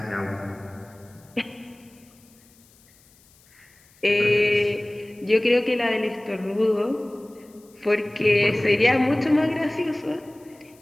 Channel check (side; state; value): left; noise; hiss, 29 dB below the sound